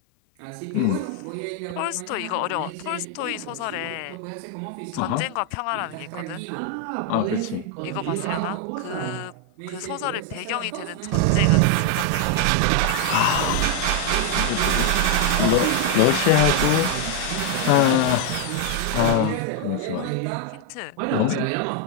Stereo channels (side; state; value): both; different; correlation 0.00